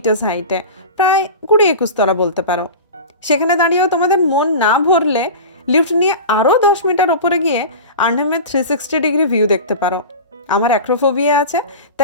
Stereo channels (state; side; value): inverted; both; correlation -0.31